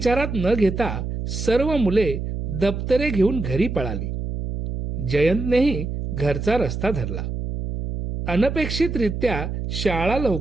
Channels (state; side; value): noise; right; hum, 5 dB below the sound